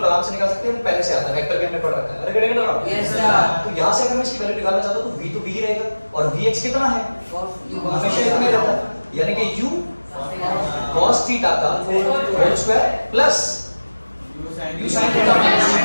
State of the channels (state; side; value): inverted; both; correlation -1.00